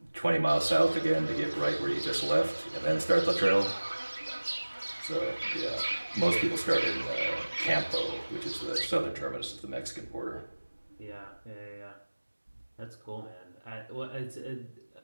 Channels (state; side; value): inverted; both; correlation -1.00